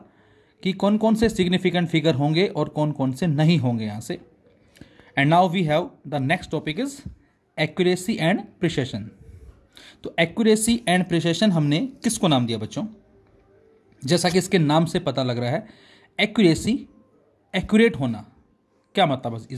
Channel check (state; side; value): identical; both; correlation 1.00